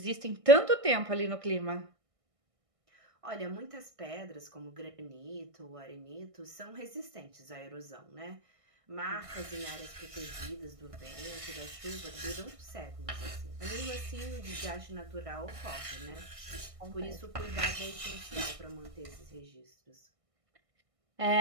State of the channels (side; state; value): left; late; 1.6 ms